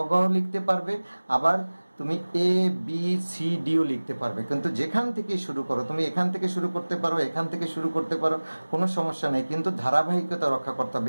ঘ লিখতে পারবে, আবার তুমি এ বি সি ডিও লিখতে পারবে। কিন্তু যেখান থেকে শুরু করো, তুমি এখান থেকে শুরু করতে পারো, এখান থেকে শুরু করতে পারো, কোনো সমস্যা নেই। কিন্তু ধারাবাহিকতা রক্ষা করতে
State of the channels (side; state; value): both; inverted; correlation -1.00